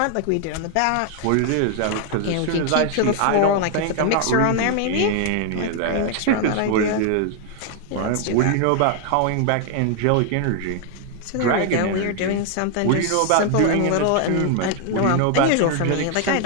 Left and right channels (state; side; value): different; both; correlation 0.00